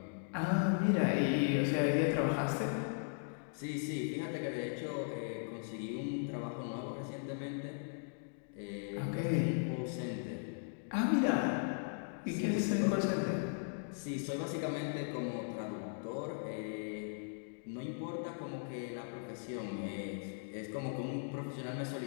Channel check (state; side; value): silent; right; digital silence